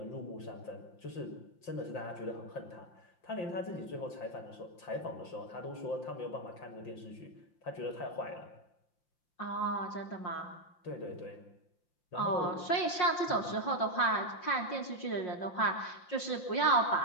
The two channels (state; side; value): late; right; 5.6 ms